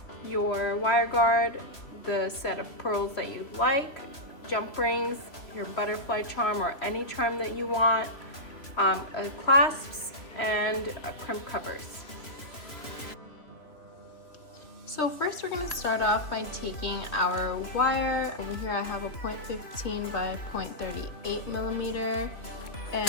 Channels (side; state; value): right; late; 3.0 ms